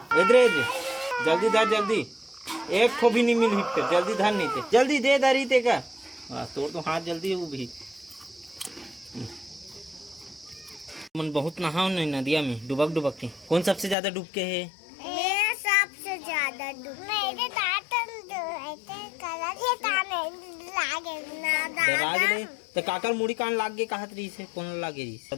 इधर जल्दी धा जल्दी एक ठो भी नहीं मिल फिर जल्दी धान नहीं थे जल्दी दे दारी ते का तोड़ तो हाथ जल्दी है वो भी मन बहुत नहाओ नहीं नदिया में डुबक के कौन सबसे ज्यादा डूब के है मैं सबसे ज्यादा डूब मेरे लागे तो काकर मुड़ी कान लाग गए कहत रही से कौन लागे रही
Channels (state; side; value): drops out; right; at 14.0 s